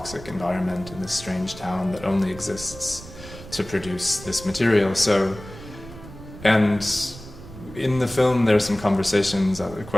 environment, in this strange town that only exists to produce this material. So, and in the film, there are some questions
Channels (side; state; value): right; noise; rumble, 15 dB below the sound